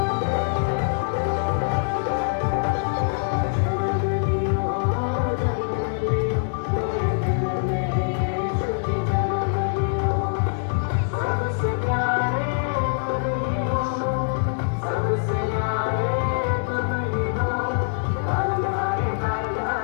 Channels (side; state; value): right; silent; digital silence